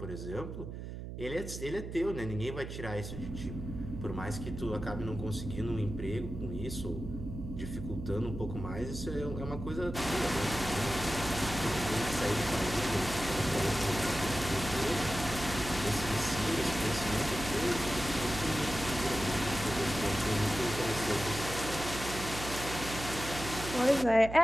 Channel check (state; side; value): noise; right; hum, 8 dB below the sound